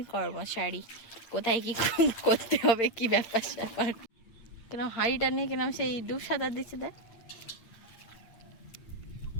কর্মচারী, কোথায় কি করতে হবে, কি ব্যাপার স্যাপার। কেন হাঁড়িটা নিয়ে কেন সেই ডুব সাঁতার দিচ্ছে দেখ।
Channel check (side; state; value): right; late; 8.7 ms